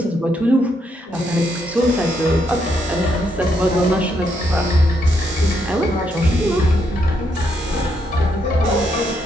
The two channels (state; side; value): normal; both; correlation 0.76